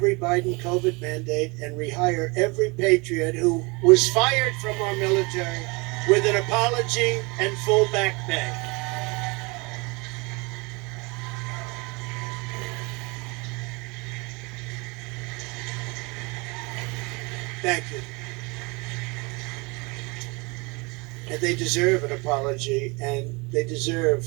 Biden COVID mandate and rehire every patriot who was fired from our military with an apology and full back pay. Thank you. And they deserve an apology, and they deserve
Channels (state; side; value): quieter; left; 27.4 dB